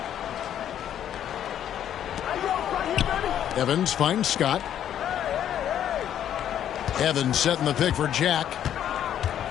Evans finds Scott. Evans setting the pick for Jack.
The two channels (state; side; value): quieter; right; 10.3 dB